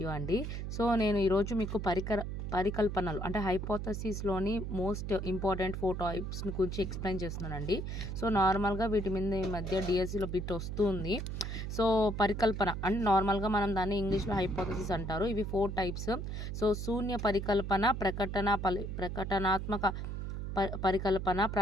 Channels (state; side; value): noise; right; hum, 5 dB below the sound